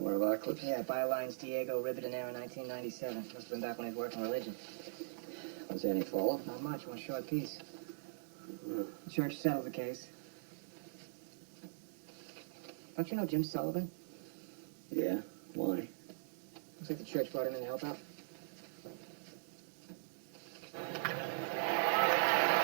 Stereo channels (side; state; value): left; silent; digital silence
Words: one of our clips? Yeah, bylines Diego Ribadenero, 1997. Must have been back when he was working religion. Was there any follow-up? Not much, one short piece. The church settled the case. Don't you know Jim Sullivan? Yeah. Why? Looks like the church brought him in to help out.